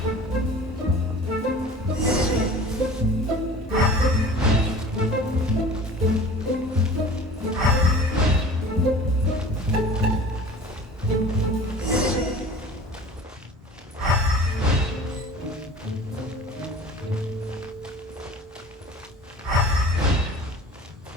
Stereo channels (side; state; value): both; normal; correlation 0.41